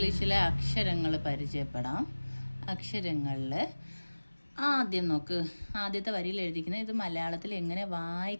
അക്ഷരങ്ങൾ പരിചയപ്പെടാം. അക്ഷരങ്ങളിൽ ആദ്യം നോക്ക്, ആദ്യത്തെ വരിയിൽ എഴുതിയിരിക്കുന്നത് ഇത് മലയാളത്തിൽ എങ്ങനെ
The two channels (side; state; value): both; inverted; correlation -1.00